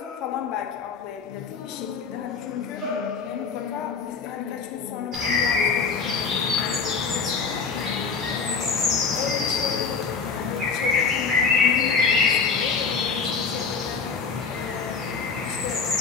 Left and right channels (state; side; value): quieter; right; 5.3 dB